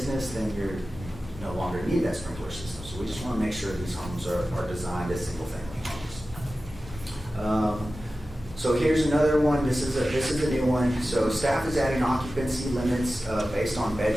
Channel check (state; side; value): normal; both; correlation 0.95